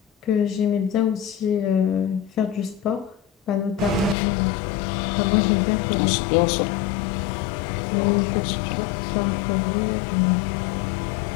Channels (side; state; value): right; drops out; at 4.2 s